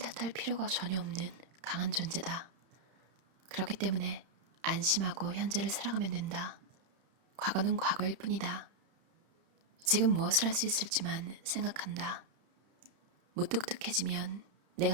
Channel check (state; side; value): late; left; 31 ms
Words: 필요가 전혀 없는 강한 존재다. 그렇기 때문에 안심하고 현재를 살아가면 된다. 과거는 과거일 뿐이다. 지금 무엇을 할 수 있을지만 생각한다. 무뚝뚝해지면